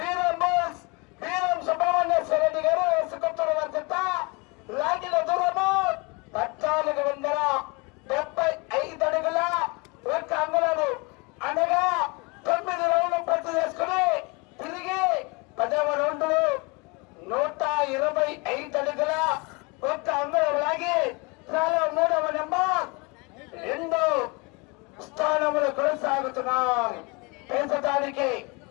సుబ్రహ్మణ్యేశ్వర రెడ్డి గారు వేసుకొత్తుల వద్ద లాగిన దూరము 1400 కొనసాగుతున్నాం. ప్రస్తుతానికి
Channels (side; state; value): right; quieter; 28.7 dB